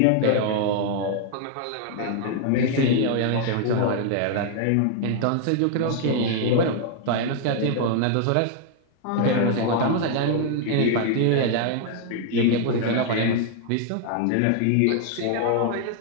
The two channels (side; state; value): both; different; correlation 0.00